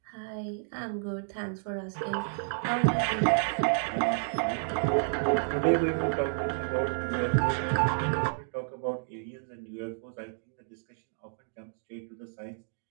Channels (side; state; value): left; silent; digital silence